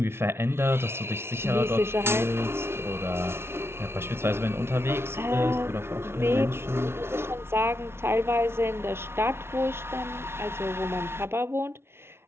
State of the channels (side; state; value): left; late; 0.12 ms